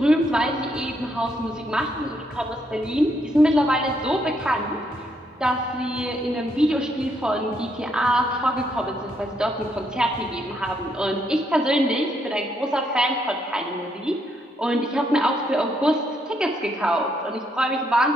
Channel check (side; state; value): both; normal; correlation 0.75